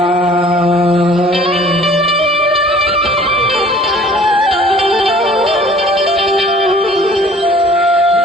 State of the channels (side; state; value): both; normal; correlation 0.51